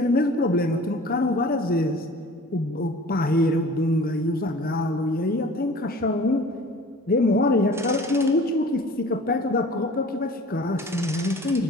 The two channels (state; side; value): normal; both; correlation 0.44